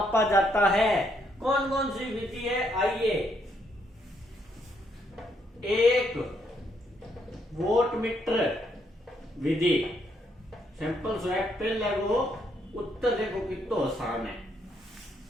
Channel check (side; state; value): both; normal; correlation 0.74